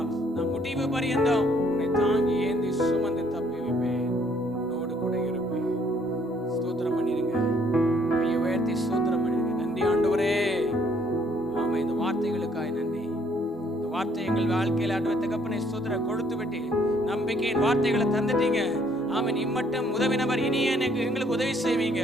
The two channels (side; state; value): both; normal; correlation 0.65